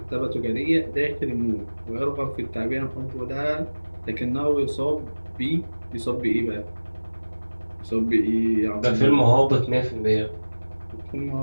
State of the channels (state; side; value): inverted; both; correlation -1.00